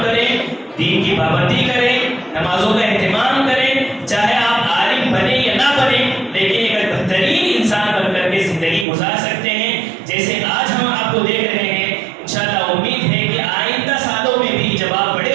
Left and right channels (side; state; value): left; drops out; at 8.8 s